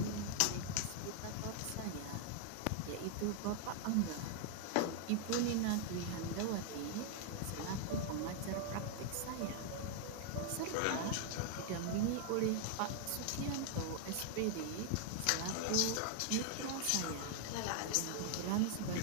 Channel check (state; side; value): different; both; correlation 0.00